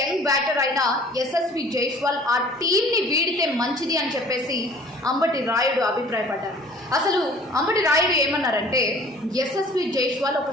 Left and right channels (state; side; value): normal; both; correlation 0.50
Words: బ్యాటర్ అయిన యశస్వి జైస్వాల్ ఆ టీంని వీడితే మంచిది అని చెప్పేసి అంబటి రాయుడు అభిప్రాయపడ్డారు. అసలు అంబటి రాయుడు ఏమన్నారంటే, యశస్వి జైస్వాల్ ఒక